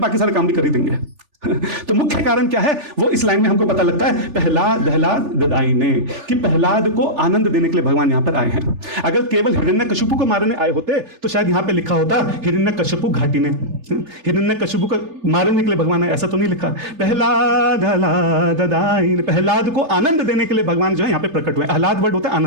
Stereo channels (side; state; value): left; late; 3.3 ms